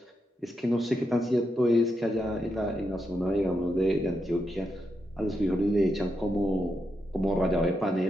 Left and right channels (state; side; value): normal; both; correlation 0.84